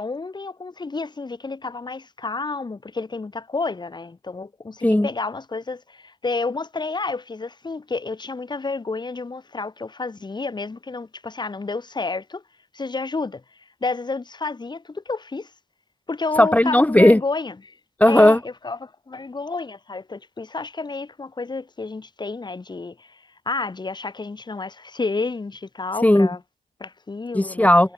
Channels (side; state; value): both; normal; correlation 0.85